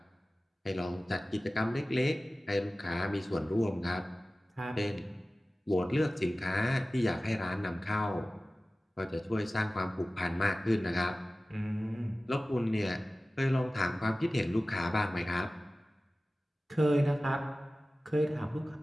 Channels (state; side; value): normal; both; correlation 0.96